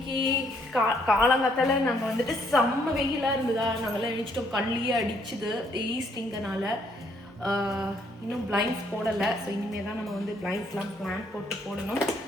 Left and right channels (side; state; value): both; normal; correlation 0.68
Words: காலங்காத்தால நாங்கள் வந்துட்டு செம்ம வெயிலாக இருந்ததா, நாங்கள்லாம் எழுச்சிட்டோம். கண்ணிலேயே அடிச்சுது ஈஸ்டிங்கனால. இன்னும் பிளைண்ட்ஸ் போடலை. ஸோ இனிமேல் தான் நம்ம வந்து பிளைண்ட்ஸ்லாம் பிளான் போட்டு போடணும்.